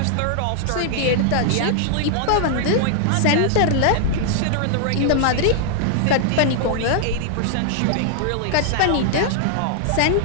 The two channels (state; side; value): different; both; correlation -0.01